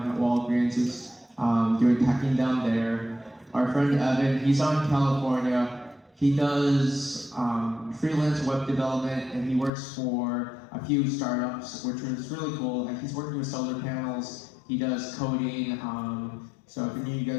at Walgreens. He's doing packing down there. Our friend Evan, he's on California. He does freelance web development, and he works for a few startups, which is really cool. Like, he's working with solar panels. He does coding. So if any of you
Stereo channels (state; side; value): drops out; right; at 9.7 s